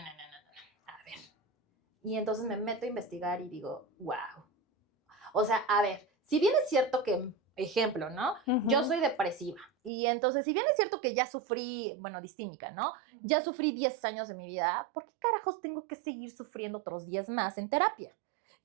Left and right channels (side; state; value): left; drops out; at 9.9 s